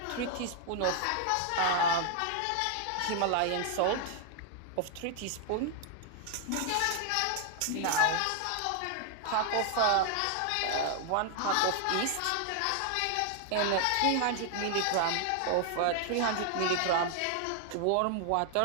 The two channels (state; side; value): different; both; correlation 0.00